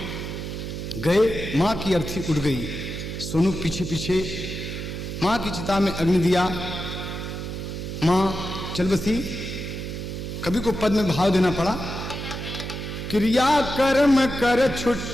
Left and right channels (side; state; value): right; noise; hum, 6 dB below the sound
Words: गए। माँ की अर्थी उड़ गई, सोनू पीछे पीछे माँ की चिता में अग्नि दिया। माँ चल बसी। कभी को पद में भाव देना पड़ा, क्रिया कर्म कर